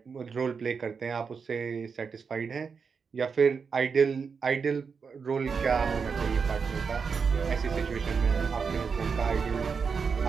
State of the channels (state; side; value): quieter; left; 5.6 dB